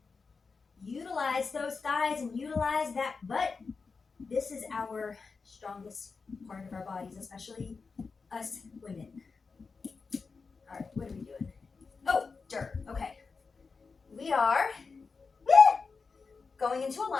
Utilize those thighs and utilize that butt. This is our strongest part of our bodies, especially us women. All right, what are we doing? Oh, dirt. Okay. We are going into a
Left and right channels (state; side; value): quieter; right; 4.7 dB